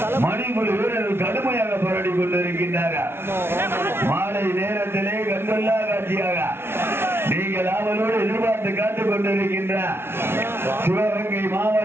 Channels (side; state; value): left; late; 0.12 ms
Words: மணிக்குடி வீரர்கள் கடுமையாக போராடி கொண்டிருக்கின்றார்கள். மாலை நேரத்திலே கண்கொள்ளா காட்சியாக நீங்கள் ஆவலோடு எதிர்பார்த்து காத்துக் கொண்டிருக்கின்ற சிவகங்கை